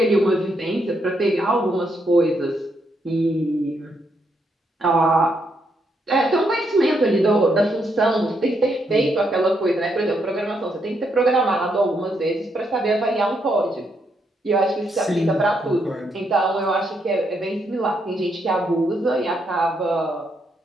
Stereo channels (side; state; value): both; normal; correlation 0.77